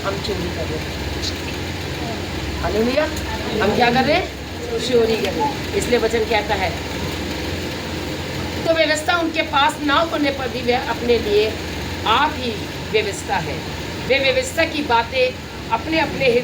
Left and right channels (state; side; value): identical; both; correlation 1.00